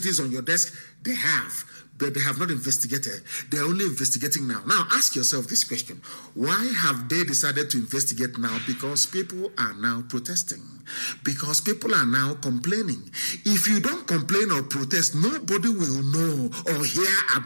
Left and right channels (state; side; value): inverted; both; correlation -1.00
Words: on your desk? They have, but they have not investigated. They're only investigating now. Now, ask yourself this question. Why have they decided to investigate now? Because people are now protesting. Because people are now complaining. If you don't complain or protest, nobody will know or hear